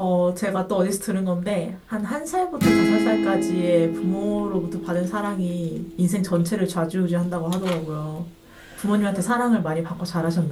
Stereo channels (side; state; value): both; identical; correlation 1.00